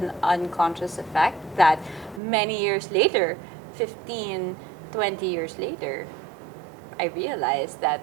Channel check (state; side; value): drops out; left; at 2.2 s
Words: unconscious effect that many years later, 15, 20 years later, I realized that